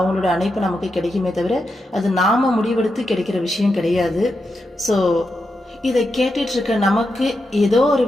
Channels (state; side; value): normal; both; correlation 0.86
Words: அணைப்பு நமக்கு கிடைக்குமே தவிர அது நாம முடிவெடுத்து கிடைக்கிற விஷயம் கிடையாது. ஸோ இதை கேட்டுட்டு இருக்க நமக்கு ஏதோ ஒரு